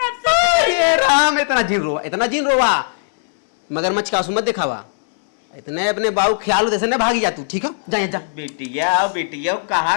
सकते। राम इतना जिन रोवा मगरमच्छ का आंसू मत दिखावा, इतने अपने बाबू ख्याल जैसे न भागी जा तू, ठीक है जा जा। बिटिया कहा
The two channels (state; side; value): silent; right; digital silence